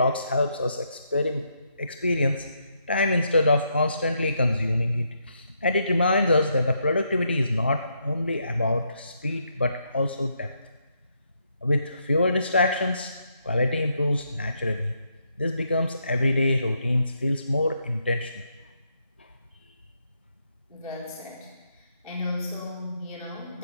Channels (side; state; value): both; inverted; correlation -0.77